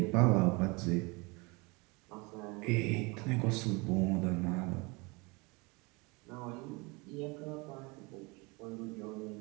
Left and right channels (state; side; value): quieter; left; 27.1 dB